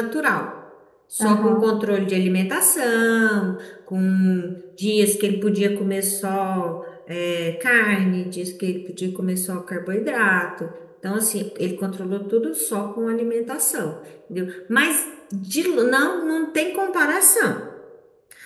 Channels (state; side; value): identical; both; correlation 1.00